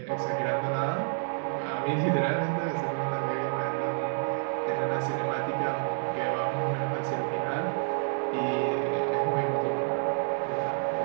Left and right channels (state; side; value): silent; left; digital silence